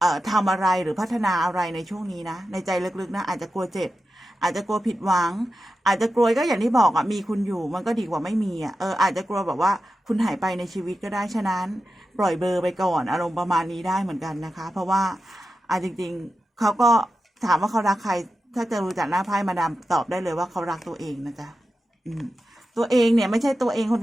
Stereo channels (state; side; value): normal; both; correlation 0.91